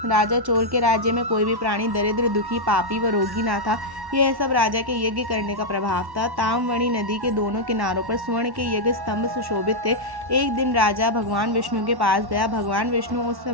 राजा चोल के राज्य में कोई भी प्राणी दरिद्र, दुखी, पापी व रोगी ना था। यह सब राजा के यज्ञ करने का प्रभाव था। ताम्रवणी नदी के दोनों किनारों पर स्वर्ण के यज्ञ स्तंभ सुशोभित थे। एक दिन राजा भगवान विष्णु के पास गया। भगवान विष्णु उस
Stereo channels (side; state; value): left; late; 1.1 ms